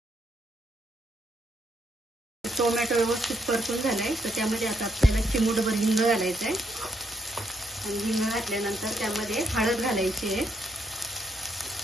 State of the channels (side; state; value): both; normal; correlation 0.76